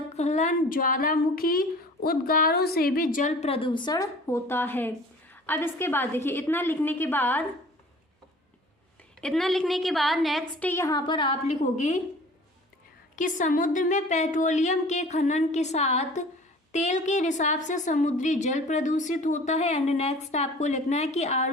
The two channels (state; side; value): normal; both; correlation 0.46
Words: ज्वालामुखी उद्गारों से भी जल प्रदूषण होता है। अब इसके बाद देखिए इतना लिखने के बाद नेक्स्ट यहाँ पर आप लिखोगे कि समुद्र में पेट्रोलियम के खनन के साथ तेल के रिसाव से समुद्री जल प्रदूषित होता है। एंड नेक्स्ट आपको लिखना है कि